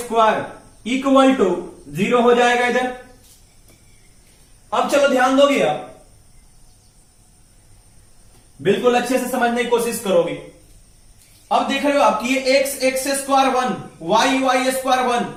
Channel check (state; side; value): identical; both; correlation 1.00